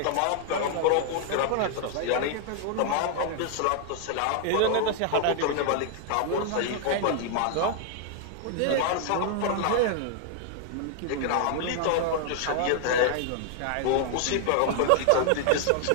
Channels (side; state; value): both; different; correlation 0.00